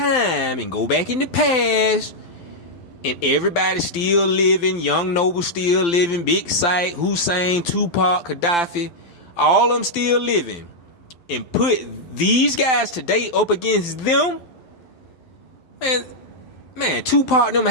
and go back in the past, and everybody still living, Young Noble still living, Big Sight, Hussein, Tupac, Gaddafi, all of them still living, and put these guys today up against them, man, Tupac and them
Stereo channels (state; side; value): late; right; 12 ms